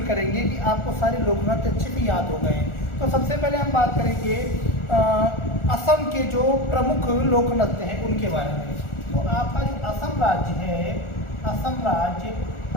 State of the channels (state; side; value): late; right; 1.4 ms